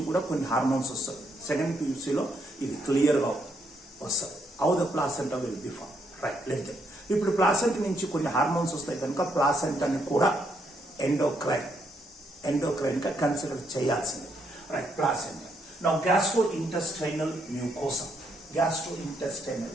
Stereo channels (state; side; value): normal; both; correlation 0.75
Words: కూడా కొన్ని హార్మోన్స్ వస్తాయి. సెకండ్ PUCలో ఇది క్లియర్గా వస్తుంది. How the placenta will be form. Right, let them. ఇప్పుడు ప్లాసెంట్ నుంచి కొన్ని హార్మోన్స్ వస్తాయి కనుక ప్లాసెంటాని కూడా ఎండోక్రైన్గా కన్సిడర్ చేయాల్సింది. Right, placenta. Now, gastrointestinal mucosa,